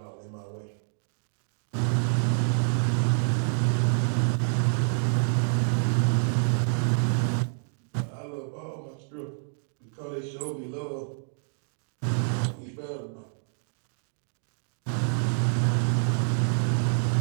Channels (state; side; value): silent; left; digital silence